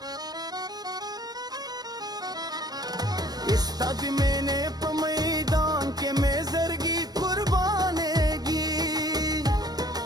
इस तद मैंने मैदान के में जरगी कुर्बानेगी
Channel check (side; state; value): left; late; 0.19 ms